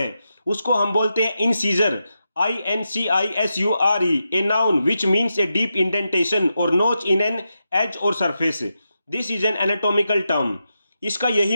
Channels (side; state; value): both; inverted; correlation -0.87